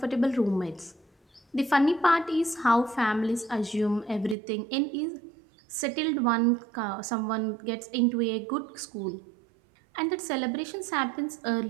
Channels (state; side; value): drops out; left; at 4.4 s